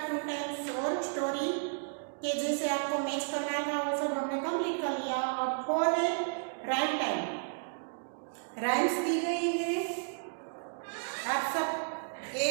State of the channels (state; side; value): silent; left; digital silence